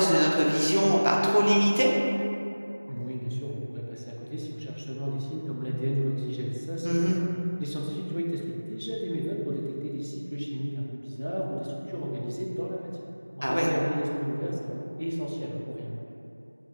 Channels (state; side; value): inverted; both; correlation -1.00